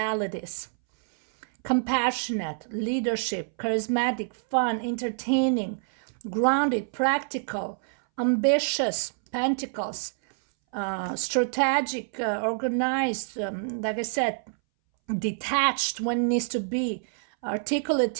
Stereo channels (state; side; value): silent; left; 60 dB below the other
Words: Compassionate, leadership, charismatic, fun, entertaining, grounded, practical, ambitious, pentacles, strategic, organized, like I said, detached when it needs to be,